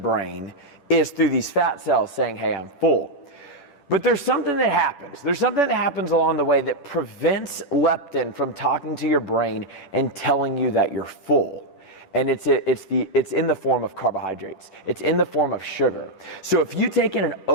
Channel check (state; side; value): late; right; 10 ms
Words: is through these fat cells saying, hey, I'm full. But there's something that happens. There's something that happens along the way that prevents leptin from talking to your brain and telling you that you're full. And it's in the form of carbohydrates. It's in the form of sugar. So if you take in an